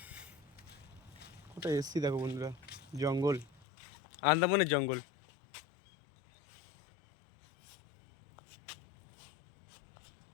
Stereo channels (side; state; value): right; drops out; at 3.7 s